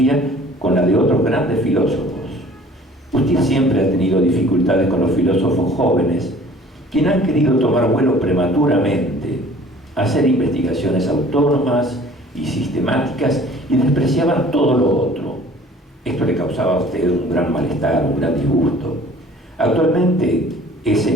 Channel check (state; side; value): normal; both; correlation 0.51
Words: con la de otros grandes filósofos. Usted siempre ha tenido dificultades con los filósofos jóvenes, quienes han querido tomar vuelo prematuramente, hacer investigaciones autónomas y sistemáticas y despreciaban todo lo otro. Esto le causaba a usted un gran malestar, un gran disgusto. Actualmente es